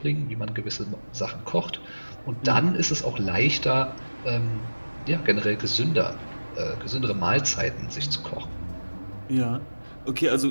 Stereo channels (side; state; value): both; inverted; correlation -1.00